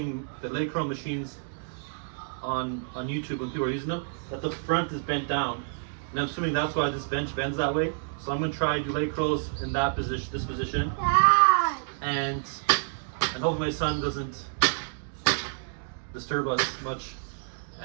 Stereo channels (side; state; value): left; silent; digital silence